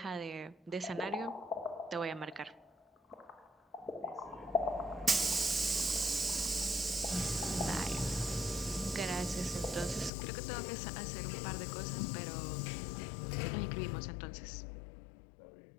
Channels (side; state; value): right; drops out; at 10.1 s